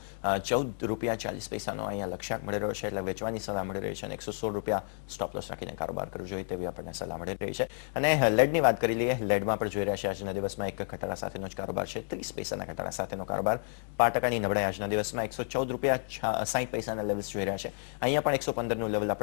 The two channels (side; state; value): right; silent; 57 dB below the other